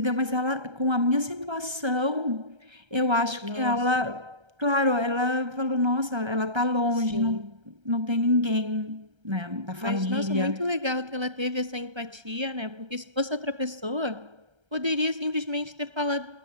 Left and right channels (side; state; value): left; late; 1.3 ms